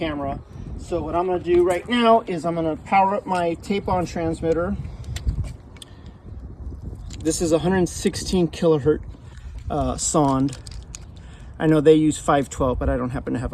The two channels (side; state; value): both; identical; correlation 1.00